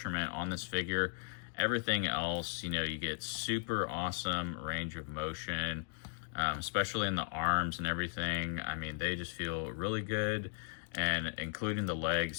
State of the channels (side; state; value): right; silent; digital silence